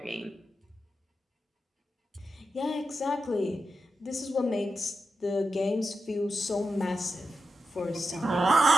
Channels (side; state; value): both; normal; correlation 0.89